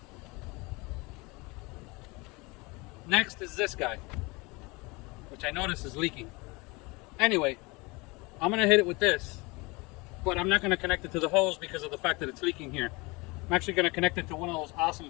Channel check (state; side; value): quieter; right; 25.5 dB